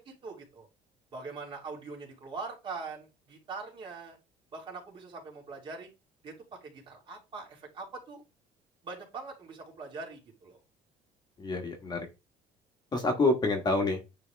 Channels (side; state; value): both; normal; correlation 0.46